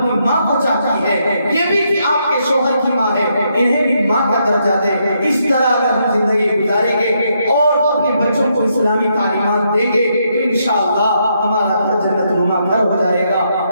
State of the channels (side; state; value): both; inverted; correlation -0.77